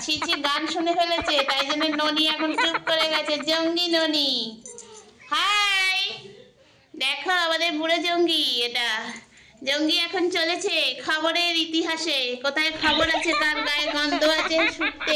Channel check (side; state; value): both; identical; correlation 1.00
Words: ছি ছি গান শুনে ফেলেছে, তাই জন্য ননি এখন চুপ করে গেছে। জঙ্গি ননি হাই, দেখো আমাদের বুড়ো জঙ্গি। এটা জঙ্গি এখন চলেছে খবরের ইতিহাসে, কোথায় খবর আছে, কার গায়ে গন্ধ আছে